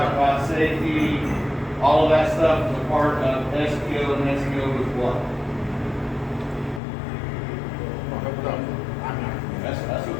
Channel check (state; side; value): drops out; right; at 6.8 s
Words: about safety, all of that stuff is a part of SEO, and SEO is what? That's